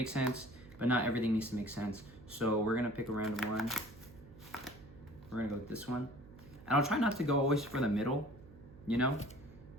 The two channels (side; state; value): right; noise; hum, 19 dB below the sound